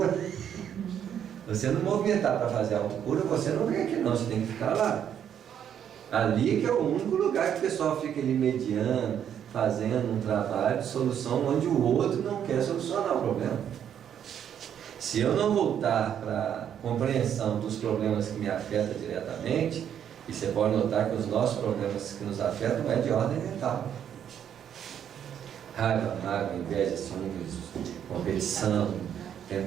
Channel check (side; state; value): left; quieter; 9.2 dB